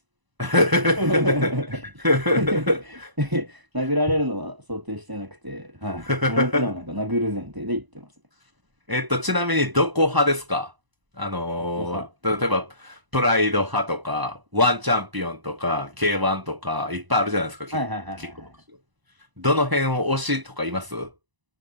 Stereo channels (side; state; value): left; late; 1.0 ms